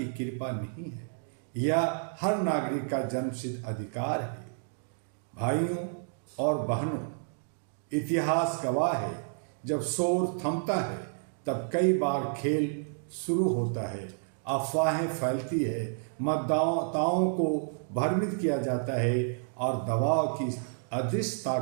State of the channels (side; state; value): left; silent; digital silence